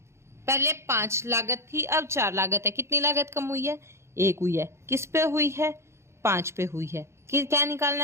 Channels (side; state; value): left; late; 0.13 ms